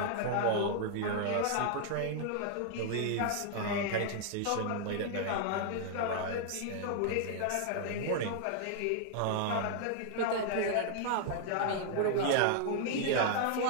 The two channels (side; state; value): both; different; correlation 0.00